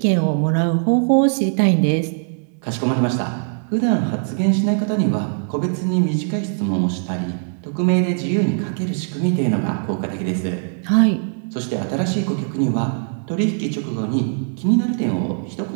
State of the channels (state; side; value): silent; left; 65 dB below the other